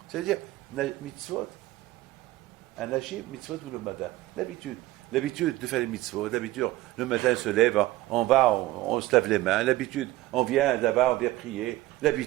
C'est-à-dire, mitzvot, anashim, mitzvot ou le mada. L'habitude de faire les mitzvot, l'habitude, le matin on se lève, on se lave les mains, l'habitude, on vient là-bas, on vient prier,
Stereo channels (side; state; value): left; quieter; 17.3 dB